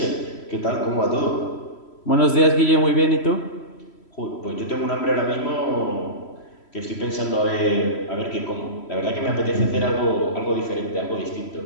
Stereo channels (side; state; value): right; late; 3.1 ms